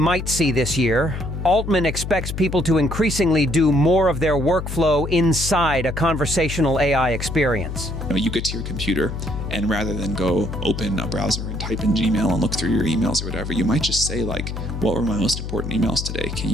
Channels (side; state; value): left; noise; hum, 6 dB below the sound